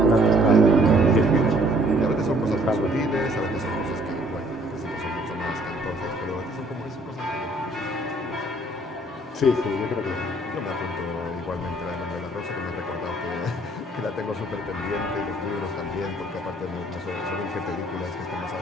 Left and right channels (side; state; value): both; normal; correlation 0.60